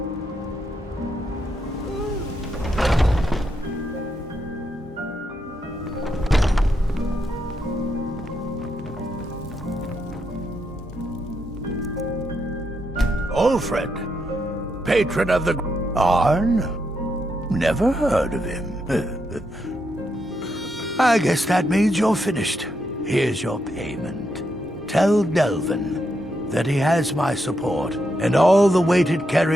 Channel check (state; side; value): normal; both; correlation 0.81